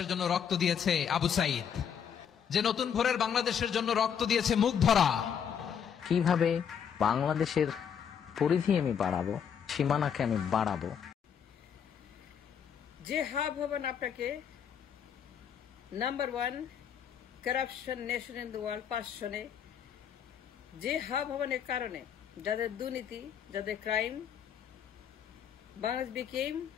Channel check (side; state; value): right; quieter; 8.0 dB